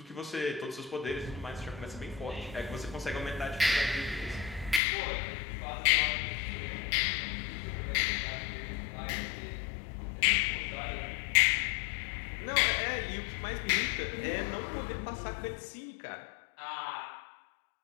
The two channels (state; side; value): drops out; right; at 4.8 s